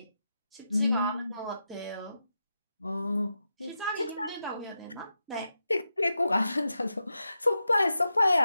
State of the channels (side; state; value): both; inverted; correlation -0.88